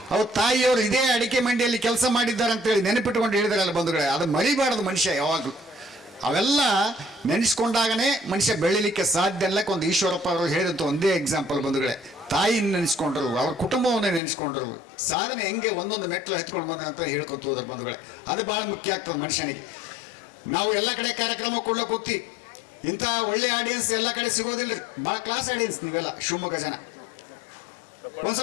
ಅವ್ರ ತಾಯಿಯವರು ಇದೇ ಅಡಿಕೆ ಮಂಡಿಯಲ್ಲಿ ಕೆಲಸ ಮಾಡಿದ್ದಾರೆ ಅಂತೇಳಿ ನೆನಪಿಟ್ಕೊಂಡು ಹೇಳಿದಾರಲ್ಲ ಬಂಧುಗಳೇ. ಅದು ಮರಿಬಾರದು ಮನುಷ್ಯ ಯಾವಾಗಲೂ. ಅವೆಲ್ಲ ನೆನೆಸ್ಕೊಂಡಾಗನೇ ಮನುಷ್ಯ ಬೆಳಿಲಿಕ್ಕೆ ಸಾಧ್ಯ. ಎಲ್ಲಕ್ಕೆ ಒಂದು ಈಶ್ವರಪ್ಪ ಅವರು ಹೇಳಿದಂಥ ಒಂದೇ ಎಕ್ಸಾಂಪಲ್ ಬಂಧುಗಳೇ. ತಾಯಿನ ನೆನೆಸ್ಕೊಂಡ್ರು, ಅವ್ರ ಕುಟುಂಬವನ್ನ ನೆನೆಸ್ಕೊಂಡ್ರು, ಸಾಧನೆ ಹೆಂಗೆ ಒಂದೊಂದು ಮೆಟ್ಲು ಹತ್ಕೊಂಡು ಬಂದ ಅಂತ ಹೇಳ್ಕೊತ ಹೋದ್ರ ಬಂಧುಗಳೇ. ಅದು ಭಾಳ ಮುಖ್ಯ ಆಗ್ತದೆ ಮನುಷ್ಯನಿಗೆ. ನಾವು ಎಲ್ಲ ಕಡೆ ಕಾರ್ಯಕ್ರಮ ಕೊಡ್ಲಿಕ್ಕೆ ಹೋಗ್ತೀವಿ, ಇಂಥ ಒಳ್ಳೆ ಆಡಿಯನ್ಸ್ ಎಲ್ಲ ಕಡೆ ಸಿಗೋದಿಲ್ಲ ರೀ. ಭಾಳ ಕ್ಲಾಸ್ ಆಡಿಯನ್ಸ್ ನೀವೆಲ್ಲ ಶಿವಮೊಗ್ಗ ಜನ.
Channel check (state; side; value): drops out; right; at 14.2 s